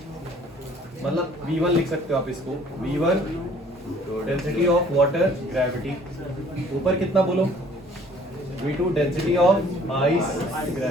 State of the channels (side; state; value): both; normal; correlation 0.56